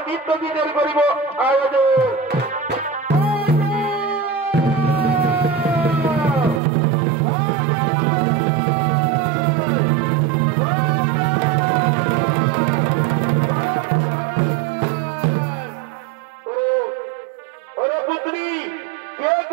নিত্য দিনের করিব আয়োজন।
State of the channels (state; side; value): drops out; left; at 6.6 s